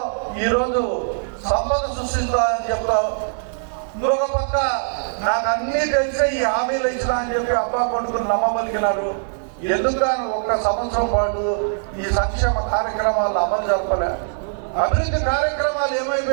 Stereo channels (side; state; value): left; silent; 64 dB below the other